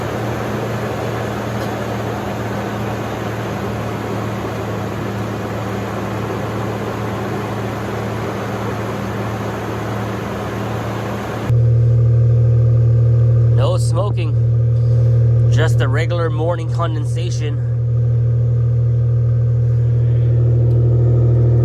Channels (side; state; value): both; identical; correlation 1.00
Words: No smoking, just the regular morning condensation.